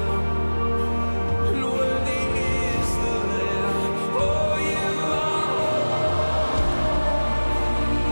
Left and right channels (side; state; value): both; inverted; correlation -1.00